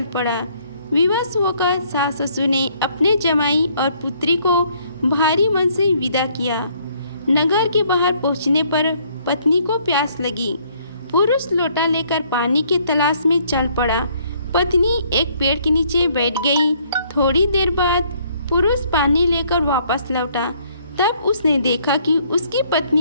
पड़ा। विवश होकर सास ससुर ने अपने जमाई और पुत्री को भारी मन से विदा किया। नगर के बाहर पहुंचने पर पत्नी को प्यास लगी। पुरुष लोटा लेकर पानी की तलाश में चल पड़ा। पत्नी एक पेड़ के नीचे बैठ गई। थोड़ी देर बाद पुरुष पानी लेकर वापस लौटा। तब उसने देखा कि उसकी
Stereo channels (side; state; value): both; inverted; correlation -0.65